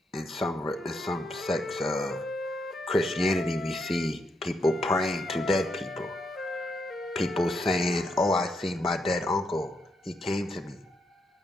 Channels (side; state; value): both; normal; correlation 0.80